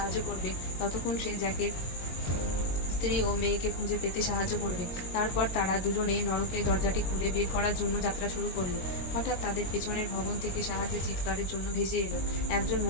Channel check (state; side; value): late; right; 22 ms